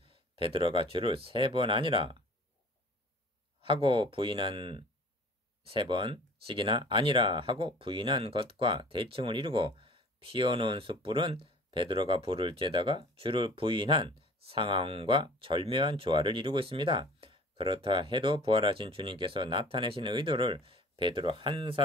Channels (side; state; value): both; normal; correlation 0.47